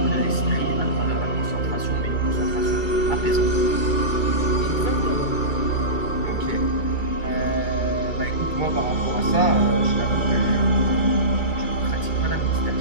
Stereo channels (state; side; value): late; right; 2.3 ms